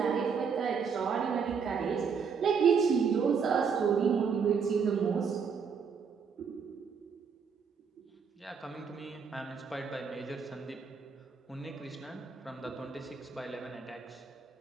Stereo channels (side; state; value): left; quieter; 6.0 dB